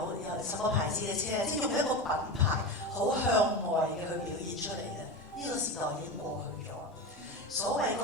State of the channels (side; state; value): both; normal; correlation 0.23